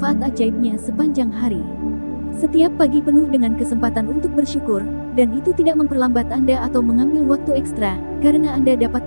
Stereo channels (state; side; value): inverted; both; correlation -1.00